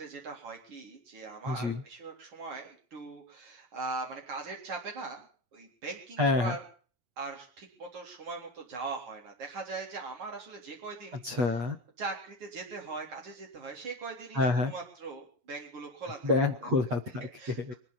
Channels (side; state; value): left; late; 8.3 ms